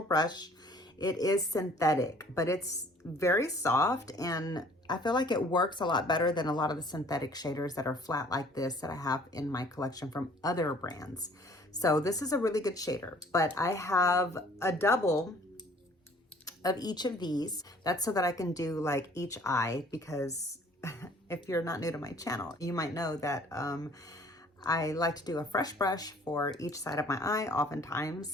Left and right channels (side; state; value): both; normal; correlation 0.55